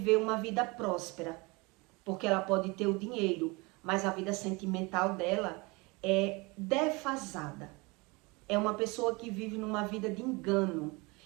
uma vida próspera, porque ela pode ter o dinheiro, mas a vida sentimental dela é defasada. É uma pessoa que vive numa vida de engano.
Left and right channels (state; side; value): quieter; left; 26.2 dB